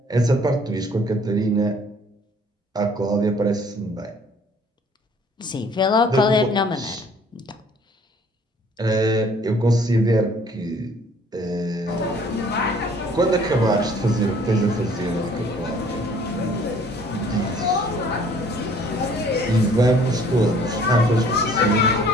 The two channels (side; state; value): both; normal; correlation 0.57